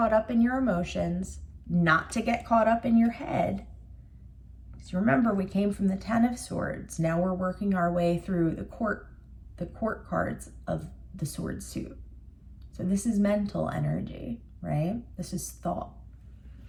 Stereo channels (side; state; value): both; identical; correlation 1.00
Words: up in your emotions, not to get caught up in your head. Because remember, we came from the Ten of Swords. Now we're working our way through the court cards of the sword suit. So this is mental energy, right? This is thought.